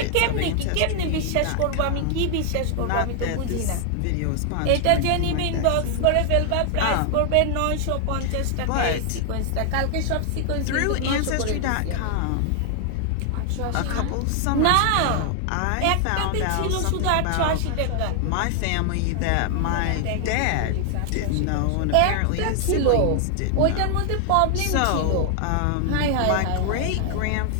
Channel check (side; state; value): both; different; correlation 0.00